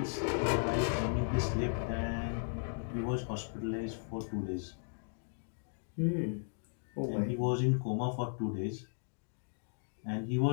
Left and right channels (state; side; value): silent; right; digital silence